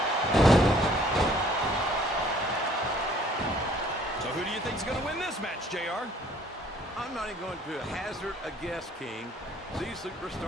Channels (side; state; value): both; normal; correlation 0.58